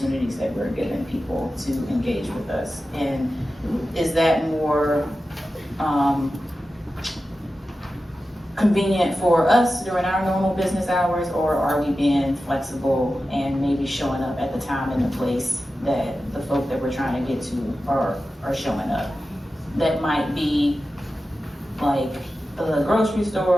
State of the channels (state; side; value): normal; both; correlation 0.93